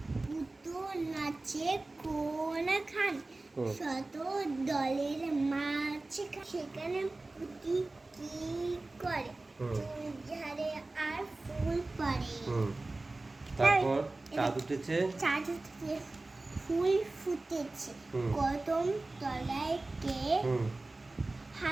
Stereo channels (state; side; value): quieter; left; 3.1 dB